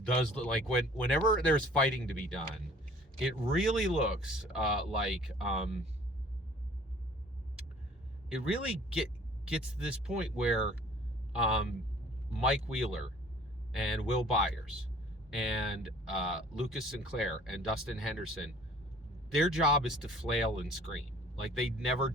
does look like whenever there's fighting to be done, it really looks it really gets to this point where Mike Wheeler and Will Byers and Lucas Sinclair and Dustin Henderson, their job is to flail and scream. Like, they never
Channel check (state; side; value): normal; both; correlation 0.52